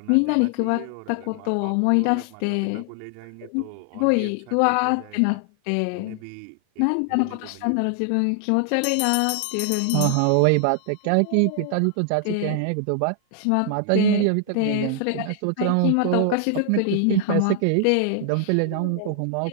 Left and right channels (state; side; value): different; both; correlation 0.00